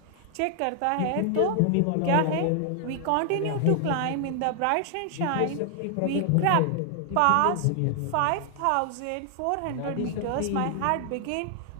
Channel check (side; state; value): both; different; correlation 0.00